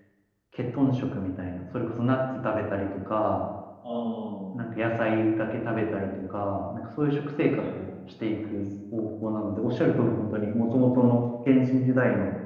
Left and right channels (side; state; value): both; identical; correlation 1.00